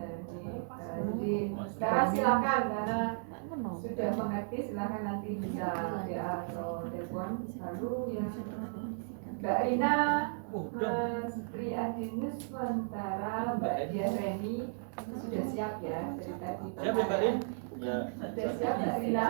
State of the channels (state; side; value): silent; left; digital silence